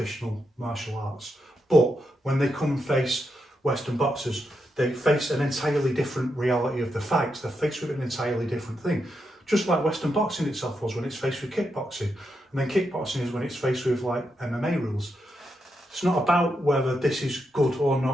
martial arts. But when they come and face Western boxers, they face an entirely different reality of the fight. They're faced with an entirely different thing. just like Western boxing itself was when it's faced with kickboxing. And then kickboxing is when it's faced with like MMA rules. It's not about whether this is good or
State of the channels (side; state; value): both; normal; correlation 0.84